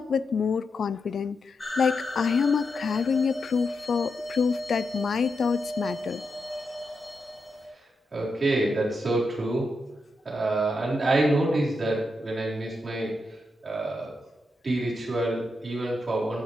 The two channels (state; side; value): normal; both; correlation 0.85